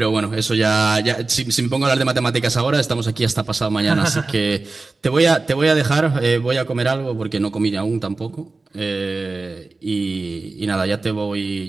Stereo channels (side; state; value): left; quieter; 3.5 dB